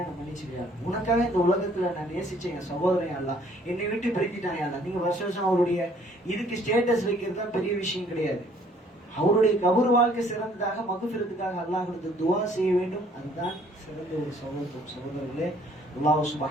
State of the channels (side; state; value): both; normal; correlation 0.60